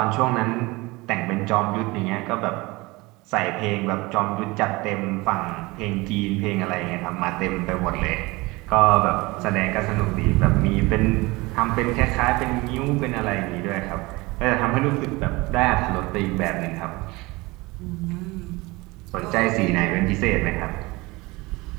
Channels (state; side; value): quieter; left; 22.8 dB